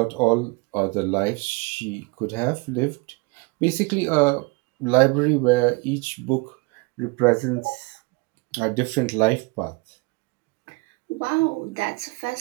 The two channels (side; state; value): left; quieter; 27.9 dB